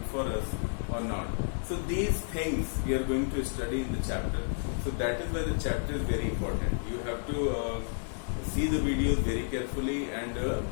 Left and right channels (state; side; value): silent; right; digital silence